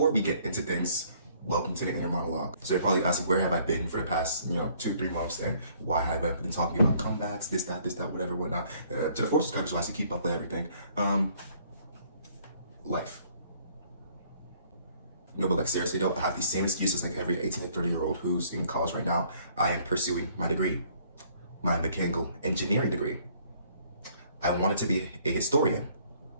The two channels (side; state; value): both; inverted; correlation -0.61